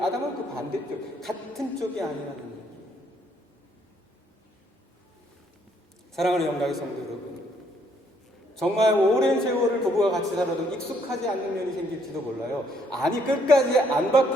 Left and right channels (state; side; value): normal; both; correlation 0.69